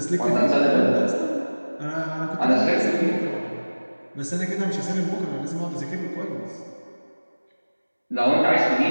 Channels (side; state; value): both; inverted; correlation -1.00